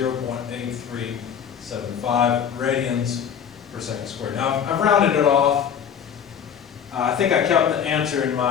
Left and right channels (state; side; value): quieter; right; 8.1 dB